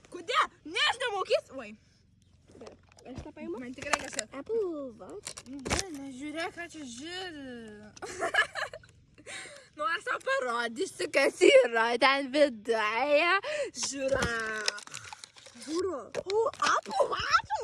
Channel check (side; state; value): both; identical; correlation 1.00